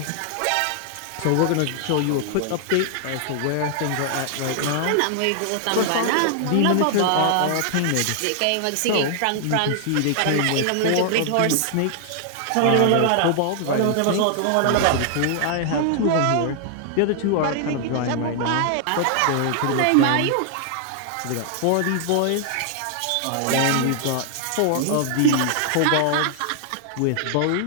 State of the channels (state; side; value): different; both; correlation 0.00